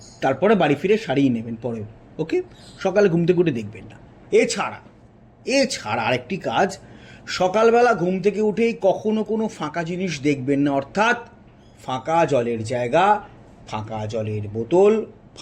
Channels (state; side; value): identical; both; correlation 1.00